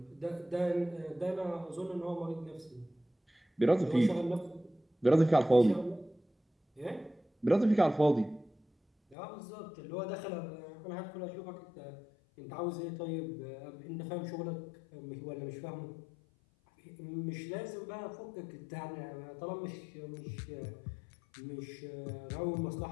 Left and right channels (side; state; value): right; drops out; at 9.2 s